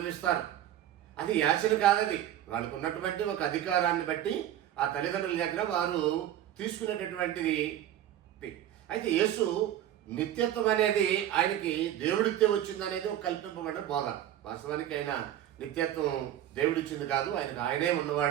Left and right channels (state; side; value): quieter; left; 11.8 dB